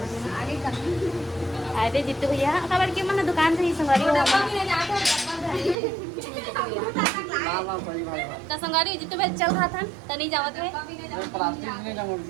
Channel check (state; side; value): drops out; left; at 5.8 s